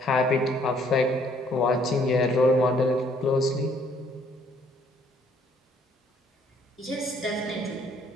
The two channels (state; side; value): normal; both; correlation 0.63